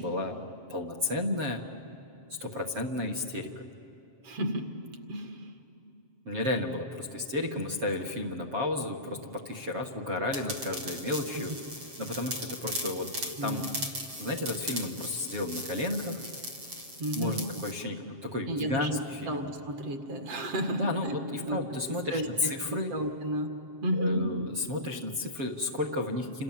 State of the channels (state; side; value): late; left; 7.5 ms